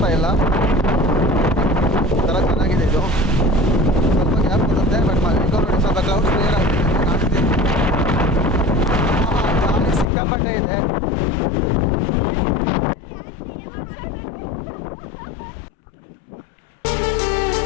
ಇಲ್ಲ, ಒಂಥರ ಚೆನ್ನಾಗಿದೆ ಇದು. ಸ್ವಲ್ಪ ಗ್ಯಾಪ್ ಕೊಡುತ್ತೆ, ಬಟ್ ನೋಡಿ ಸ್ವಲ್ಪ ಕ್ಲೌಡ್ಸ್ ಕ್ಲಿಯರ್ ಆಗುತ್ತೆ, ಕಾಣಿಸ್ತೀವಿ. ಗಾಳಿ ಸಿಕ್ಕಾಪಟ್ಟೆ ಇದೆ.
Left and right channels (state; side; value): drops out; right; at 10.1 s